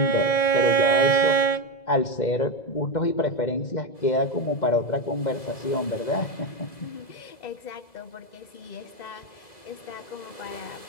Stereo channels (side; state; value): right; late; 2.0 ms